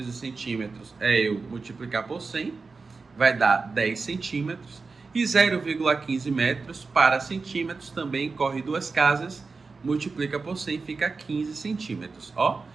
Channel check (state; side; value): quieter; left; 4.3 dB